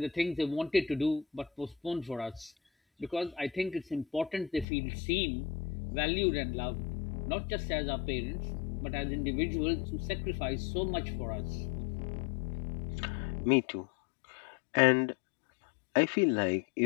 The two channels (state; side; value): drops out; right; at 4.7 s